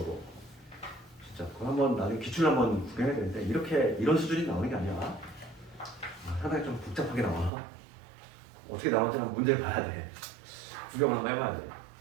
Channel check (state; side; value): drops out; left; at 7.5 s